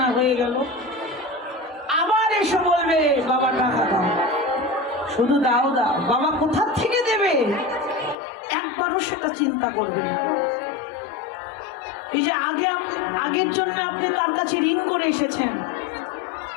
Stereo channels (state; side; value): drops out; right; at 8.2 s